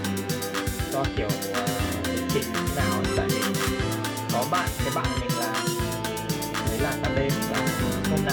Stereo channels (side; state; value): both; identical; correlation 1.00